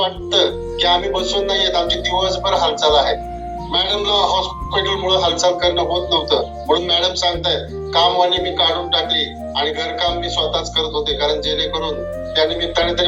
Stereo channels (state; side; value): identical; both; correlation 1.00